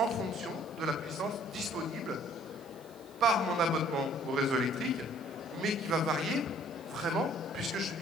fonction de la puissance disponible par mon abonnement au réseau électrique, mais qui va varier vraiment puisque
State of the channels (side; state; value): right; noise; hiss, 26 dB below the sound